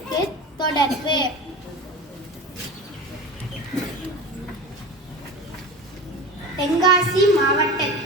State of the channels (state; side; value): normal; both; correlation 0.30